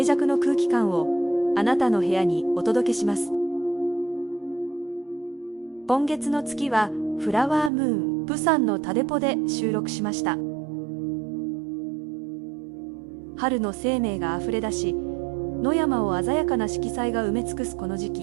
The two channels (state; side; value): drops out; left; at 7.7 s